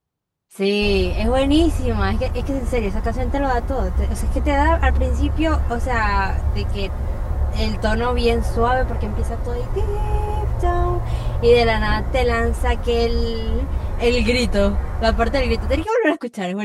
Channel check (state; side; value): identical; both; correlation 1.00